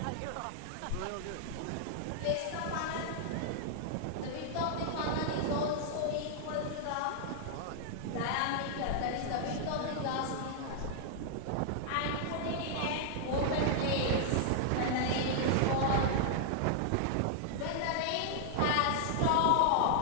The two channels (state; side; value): different; both; correlation -0.01